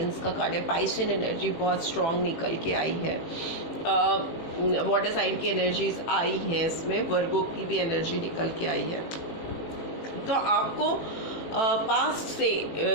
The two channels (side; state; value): right; late; 18 ms